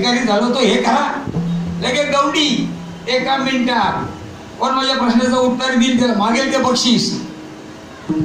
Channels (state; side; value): identical; both; correlation 1.00